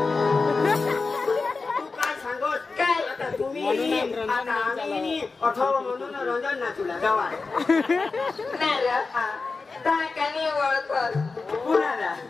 काय सांगोस काय आता तुम्ही आता आम्ही 18 म्हणून रंजन ना तुला जावा नारो ताकानी ओळखत कुणाला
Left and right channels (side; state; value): right; quieter; 4.2 dB